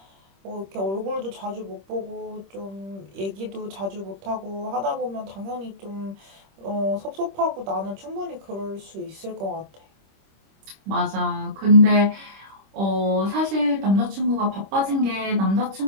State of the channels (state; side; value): late; left; 26 ms